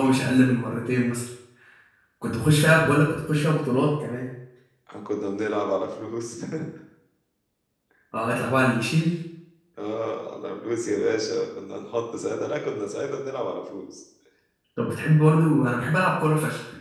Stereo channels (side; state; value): both; identical; correlation 1.00